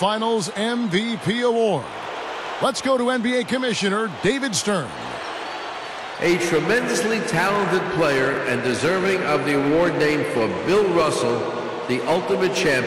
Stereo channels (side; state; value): both; identical; correlation 1.00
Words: MVP Award. Let's go to NBA Commissioner David Stern. A tremendously talented player and deserving of the award named for Bill Russell, the ultimate